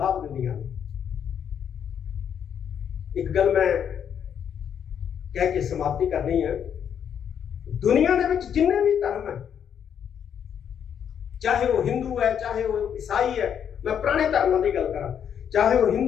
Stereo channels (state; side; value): quieter; right; 8.4 dB